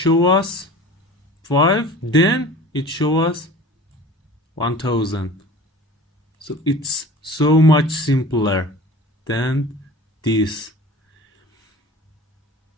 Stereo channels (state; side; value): normal; both; correlation 0.41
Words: us 5, then it show us 1000. So it's so much simpler than this.